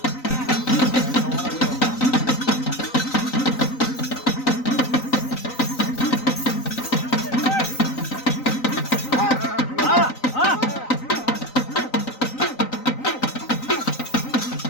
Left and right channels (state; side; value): late; right; 3.9 ms